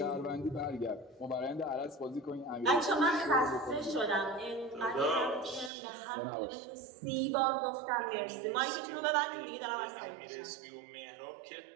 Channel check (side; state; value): left; drops out; at 5.7 s